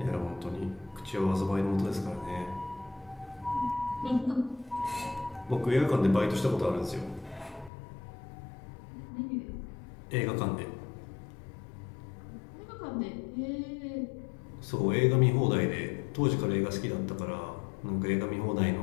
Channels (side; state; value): right; drops out; at 7.7 s